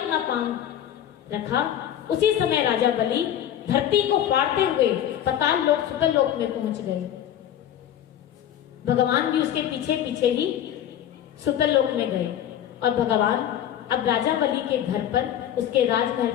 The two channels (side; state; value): right; quieter; 10.7 dB